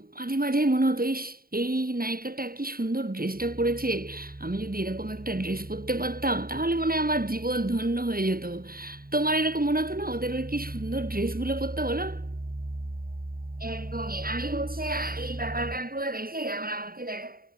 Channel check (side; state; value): left; late; 0.43 ms